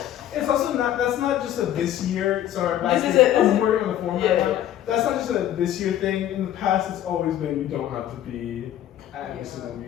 It's also not, that's not just a this year, sorry, back This is here, it. I'm working on the form right Yeah. now. That's not just a this year thing. In the past, it's always been you don't have to be at every single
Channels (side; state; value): right; quieter; 11.8 dB